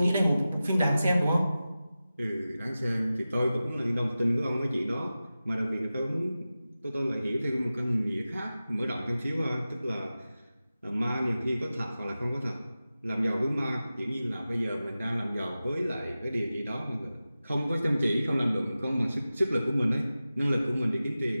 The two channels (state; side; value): inverted; both; correlation -0.95